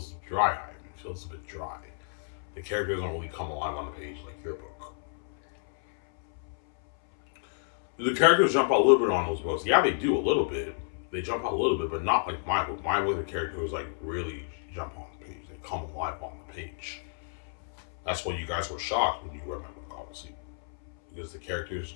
dry. It feels a bit dry. The characters don't really come alive on the page like your book. Do the characters jump out a little bit on those books? Yeah, they do a little bit. They jump out a little bit, but not like my book. My book, the characters like really jump on the page. They come alive on the page. That's why you guys were shocked when you read my book, obviously, because the characters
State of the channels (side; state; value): right; silent; 58 dB below the other